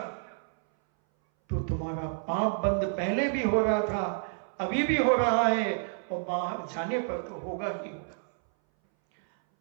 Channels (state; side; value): silent; left; 58 dB below the other